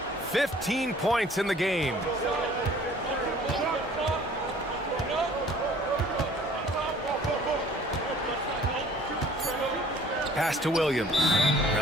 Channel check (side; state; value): both; normal; correlation 0.53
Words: 15 points in the game. Pass to Williams.